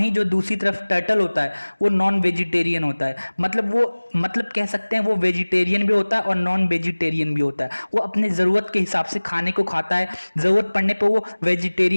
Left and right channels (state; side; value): inverted; both; correlation -1.00